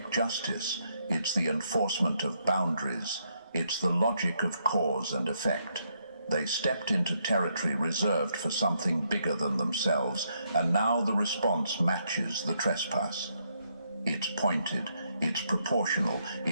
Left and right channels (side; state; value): both; inverted; correlation -0.76